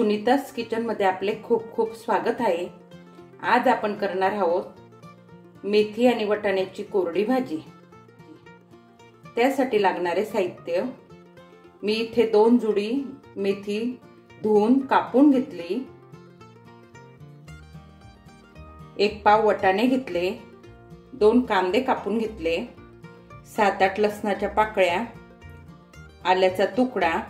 किचन मध्ये आपले खूप खूप स्वागत आहे। आज आपण करणार आहोत मेथी आणि वाटाण्याची कोरडी भाजी। त्यासाठी लागणारे साहित्य, मी इथे 2 जुडी मेथी धुवून कापून घेतली, 1 पाव वाटाणे घेतले, 2 कांदे कापून घेतले, 7-8 लसणाच्या पाकळ्या, आल्याचा तुकडा,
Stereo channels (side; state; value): both; identical; correlation 1.00